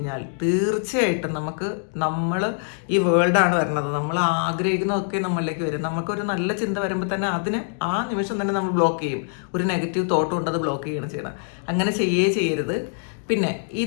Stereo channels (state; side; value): silent; right; 63 dB below the other